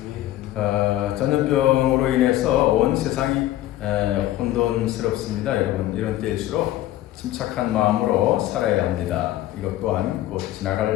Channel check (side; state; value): right; quieter; 14.5 dB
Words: 전염병으로 인해서 온 세상이 혼돈스럽습니다. 여러분 이런 때일수록 침착한 마음으로 살아야 합니다. 이것 또한 곧